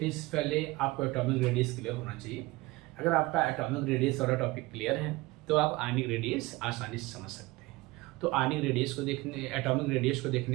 से पहले आपको एटॉमिक रेडियस क्लियर होना चाहिए। अगर आपका एटॉमिक रेडियस वाला टॉपिक क्लियर है तो आप आयनिक रेडियस आसानी से समझ सकते हैं। तो आयनिक रेडियस को देखने, एटॉमिक रेडियस को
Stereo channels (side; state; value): left; quieter; 21.2 dB